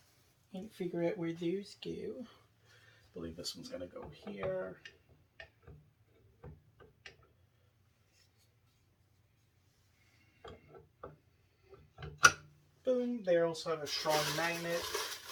And figure out where those go. I believe this one's gonna go here. Boom. They also have a strong magnet.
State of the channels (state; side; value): identical; both; correlation 1.00